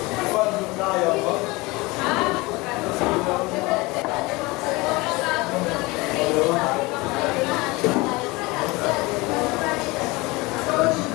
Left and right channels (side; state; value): right; quieter; 23.3 dB